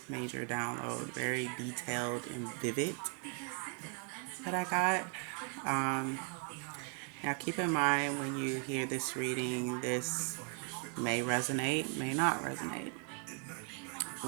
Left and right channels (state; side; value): quieter; left; 39.2 dB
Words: download. Very detailed and vivid that I got. Um, Now keep in mind when you hear this reading, this may resonate, may not resonate.